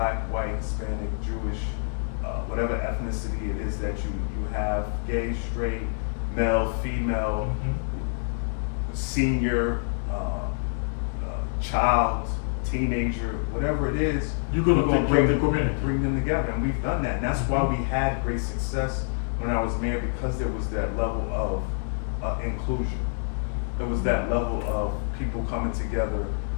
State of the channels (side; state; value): right; silent; digital silence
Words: white, Hispanic, Jewish, whatever ethnicity it is that you have, gay, straight, male, female, senior, child, teenager, whatever it is, You're gonna take care of the community. bring them together, and we've done that, and that's why we had great success when I was mayor, because there was that level of inclusion. There was that level of people coming together